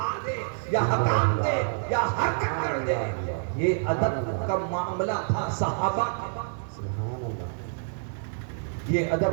دے یا حکام دے یا حرکت کر دے۔ یہ ادب کا معاملہ تھا صحابہ کا، یہ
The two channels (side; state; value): left; silent; digital silence